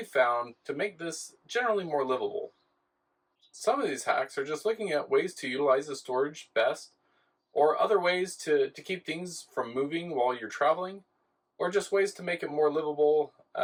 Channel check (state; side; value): identical; both; correlation 1.00